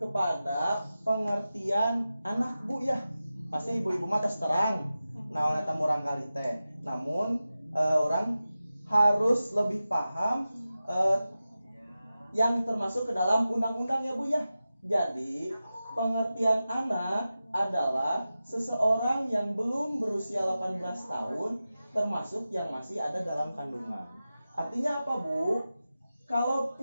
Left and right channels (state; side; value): inverted; both; correlation -0.94